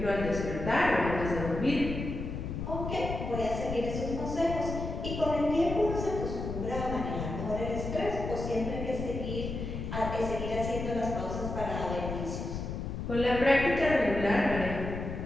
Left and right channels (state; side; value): noise; left; rumble, 5 dB below the sound